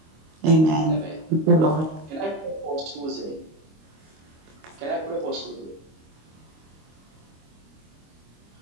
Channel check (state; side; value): late; left; 25 ms